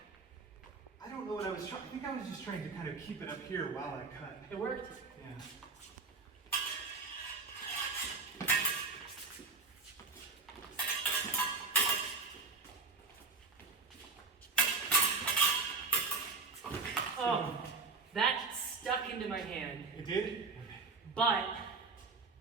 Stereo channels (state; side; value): quieter; left; 4.2 dB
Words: don't know what I was trying. I think I was just trying to kind of keep it up here while I cut. It worked. Yeah. Oh, that stuck into my hand. It did? But